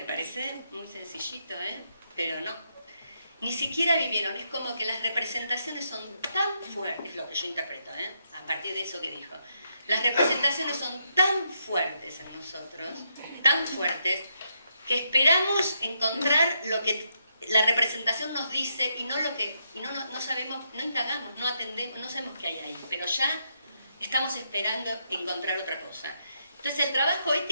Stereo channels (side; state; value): both; inverted; correlation -0.79